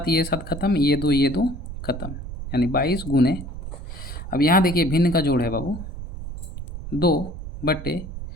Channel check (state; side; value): noise; right; rumble, 9 dB below the sound